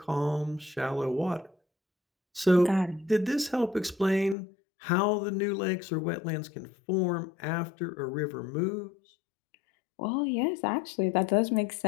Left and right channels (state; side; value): drops out; right; at 4.4 s